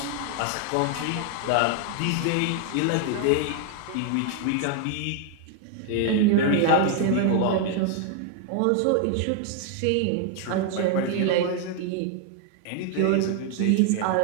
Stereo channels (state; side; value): different; both; correlation 0.00